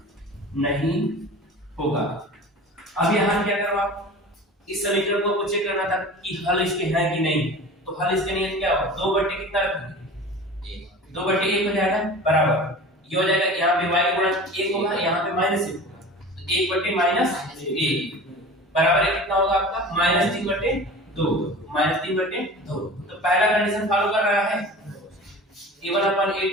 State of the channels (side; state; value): both; normal; correlation 0.37